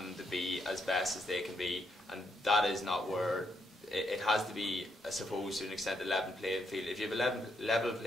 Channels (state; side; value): normal; both; correlation 0.77